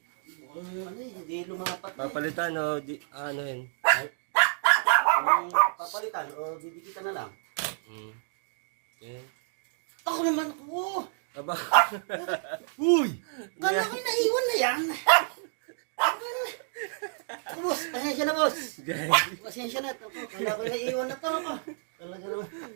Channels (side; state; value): left; silent; digital silence